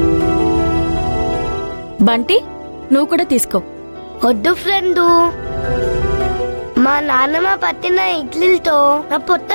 బంటి నువ్వు కూడా తీసుకో. వద్దు ఫ్రెండు, మా నాన్నమ్మ పట్టిన ఇడ్లీలతో నా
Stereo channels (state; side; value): inverted; both; correlation -1.00